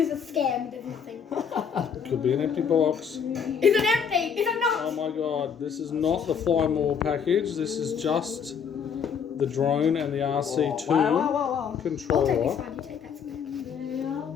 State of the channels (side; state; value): right; quieter; 7.0 dB